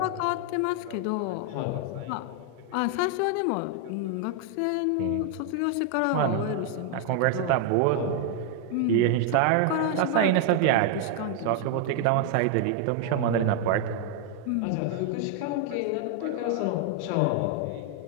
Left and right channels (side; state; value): both; different; correlation 0.00